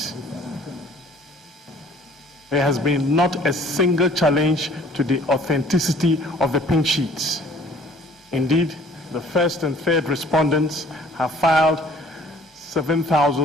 There has been not a single challenge to the authenticity of the pink sheets. Indeed, the first and third respondents have filed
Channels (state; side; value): normal; both; correlation 0.54